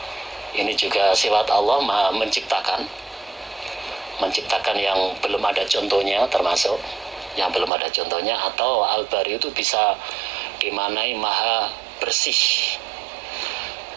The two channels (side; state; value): left; drops out; at 7.7 s